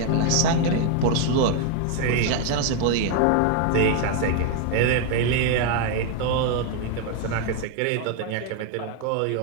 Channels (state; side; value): different; both; correlation 0.01